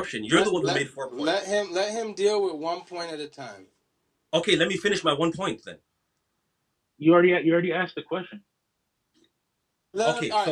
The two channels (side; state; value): both; identical; correlation 1.00